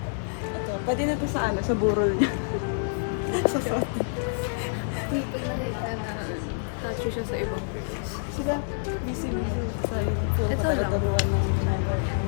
Ito, pwede na ito sa ano, sa burol niya. Sa photo. Pag nakita na touch siya sa ibang girls. Sila, busy sa puro patataluan ng ginagawa.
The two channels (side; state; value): right; silent; digital silence